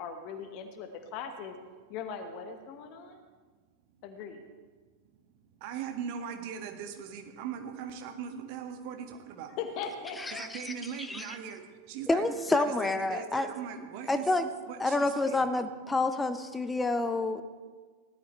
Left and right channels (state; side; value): normal; both; correlation 0.69